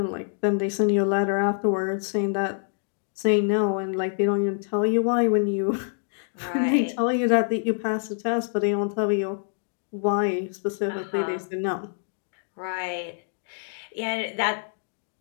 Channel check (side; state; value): right; silent; digital silence